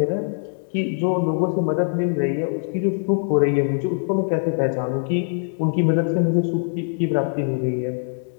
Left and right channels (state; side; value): silent; right; 64 dB below the other